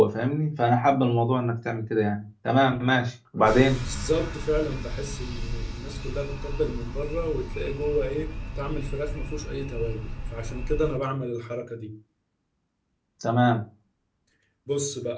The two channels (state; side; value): identical; both; correlation 1.00